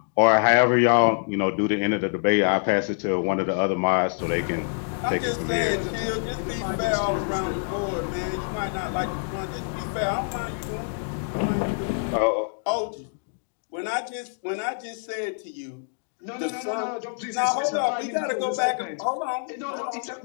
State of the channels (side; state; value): right; silent; digital silence